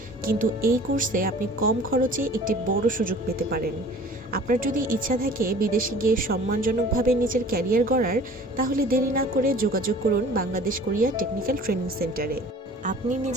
কিন্তু এই কোর্সে আপনি কম খরচে একটি বড় সুযোগ পেতে পারেন। আপনার যদি ইচ্ছা থাকে বিদেশে গিয়ে সম্মানজনকভাবে নিজের ক্যারিয়ার গড়ার, তাহলে দেরি না করে যোগাযোগ করুন বাংলাদেশ কোরিয়া টেকনিক্যাল ট্রেনিং সেন্টারে। আপনি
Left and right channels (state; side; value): normal; both; correlation 0.47